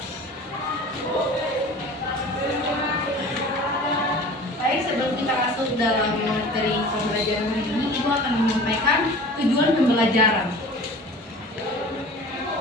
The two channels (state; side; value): normal; both; correlation 0.41